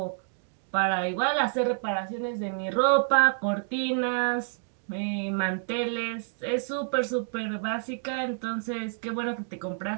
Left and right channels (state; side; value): silent; left; 59 dB below the other